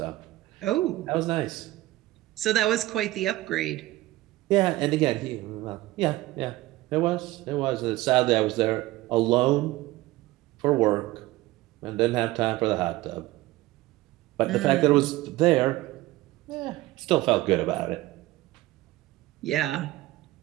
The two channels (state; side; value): quieter; left; 17.9 dB